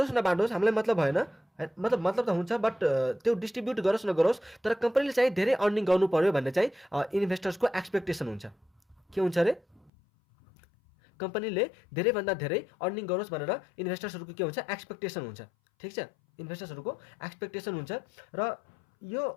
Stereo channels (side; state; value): right; drops out; at 9.9 s